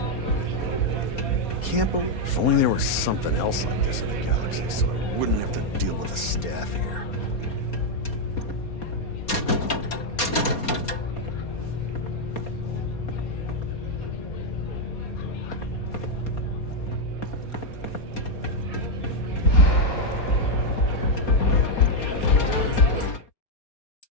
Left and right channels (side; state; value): right; late; 4.3 ms